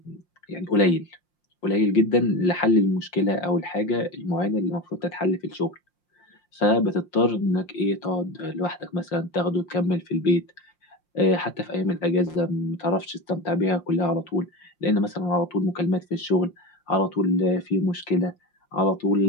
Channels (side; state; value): right; late; 5.7 ms